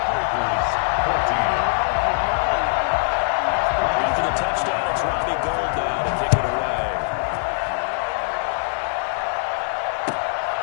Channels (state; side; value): silent; right; 64 dB below the other